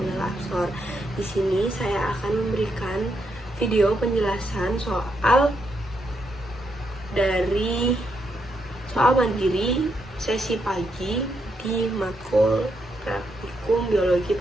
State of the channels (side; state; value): both; normal; correlation 0.80